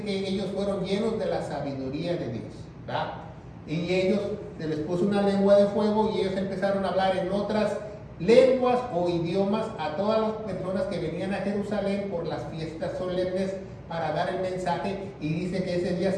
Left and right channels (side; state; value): both; identical; correlation 1.00